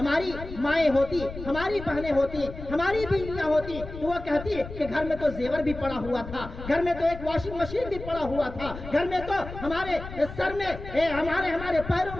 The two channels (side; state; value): left; noise; rumble, 11 dB below the sound